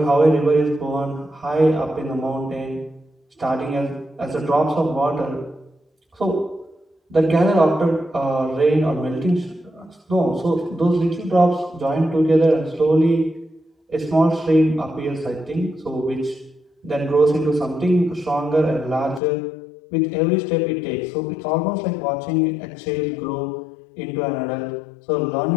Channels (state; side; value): drops out; right; at 19.2 s